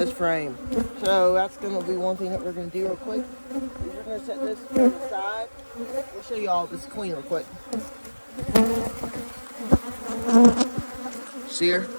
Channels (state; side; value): inverted; both; correlation -1.00